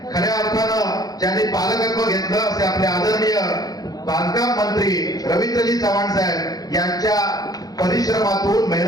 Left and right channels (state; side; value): late; right; 0.18 ms